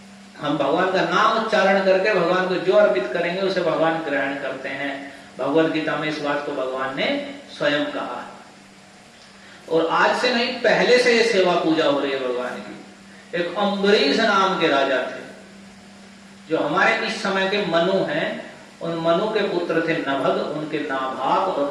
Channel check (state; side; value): identical; both; correlation 1.00